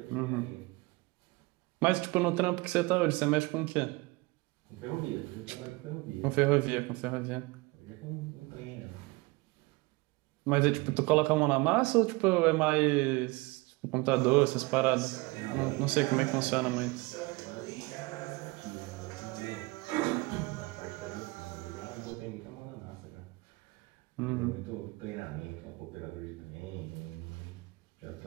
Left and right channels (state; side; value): quieter; left; 24.1 dB